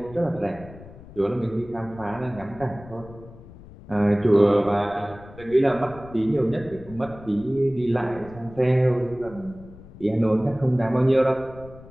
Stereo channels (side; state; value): left; noise; rumble, 19 dB below the sound